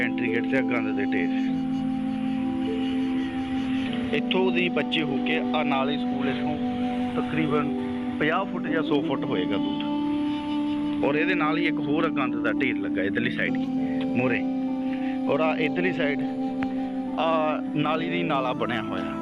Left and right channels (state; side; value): noise; left; rumble, 26 dB below the sound